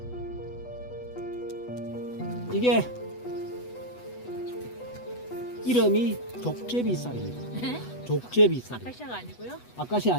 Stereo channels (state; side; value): late; right; 8.1 ms